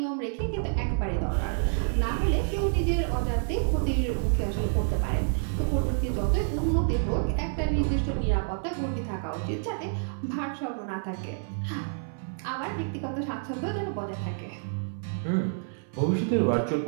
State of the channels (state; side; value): silent; left; 59 dB below the other